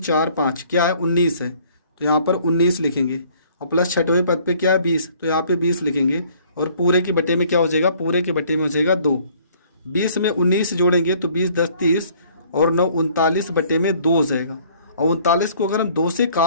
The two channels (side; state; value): both; inverted; correlation -0.58